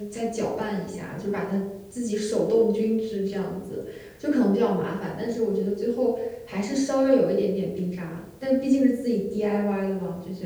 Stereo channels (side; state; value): both; identical; correlation 1.00